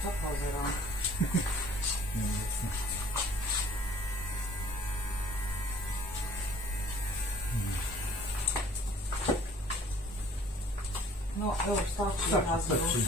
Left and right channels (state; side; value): normal; both; correlation 0.53